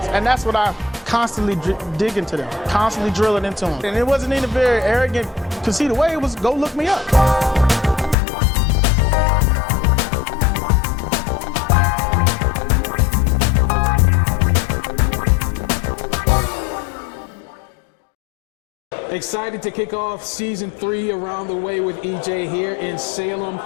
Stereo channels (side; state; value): right; drops out; at 8.2 s